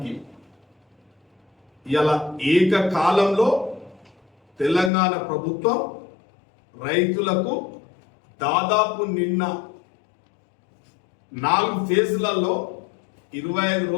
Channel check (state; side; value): drops out; right; at 4.9 s